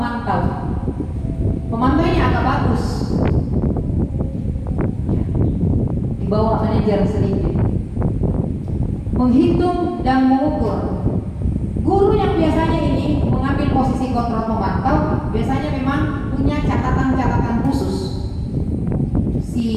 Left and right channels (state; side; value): identical; both; correlation 1.00